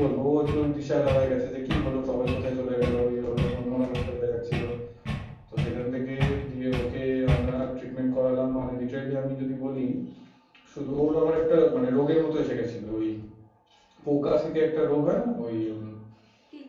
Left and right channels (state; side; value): identical; both; correlation 1.00